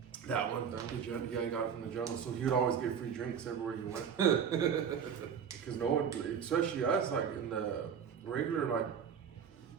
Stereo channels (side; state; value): left; quieter; 7.4 dB